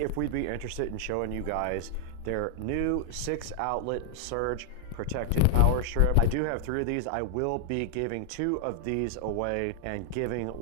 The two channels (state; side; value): different; both; correlation 0.00